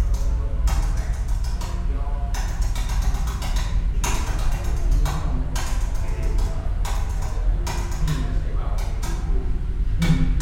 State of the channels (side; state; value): both; identical; correlation 1.00